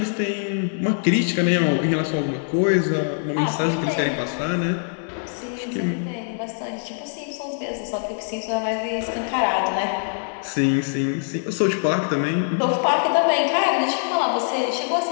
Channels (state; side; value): silent; right; digital silence